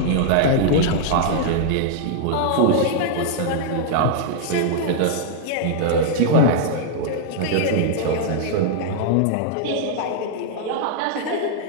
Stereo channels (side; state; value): both; different; correlation -0.01